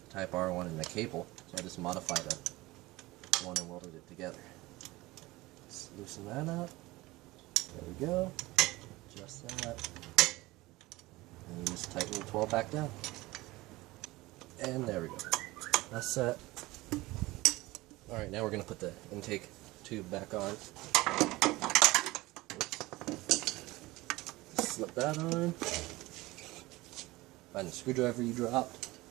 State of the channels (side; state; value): left; quieter; 20.1 dB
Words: Type R one and the cable, so I just modified the one and welded it together. Let's loosen that up. There we go. Adjust that. And you just tighten the 12 back down. And there we go. That's set. Alright, now we're going to put the intake tube back on. Slip that on. Find the screwdriver you dropped.